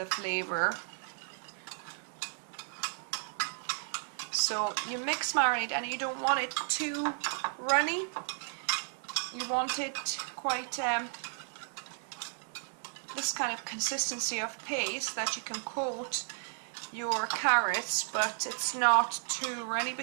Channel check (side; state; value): left; silent; 55 dB below the other